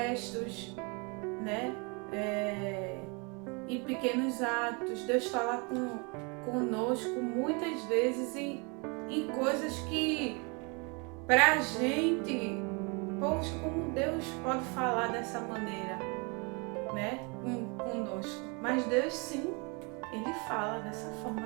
né? Em pequenos atos. Deus fala conosco muitas vezes em coisas que, pra gente, poxa, como Deus pode falar dessa maneira, né? Conosco. Mas Deus, sim, Ele fala dessa forma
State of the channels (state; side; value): quieter; left; 31.6 dB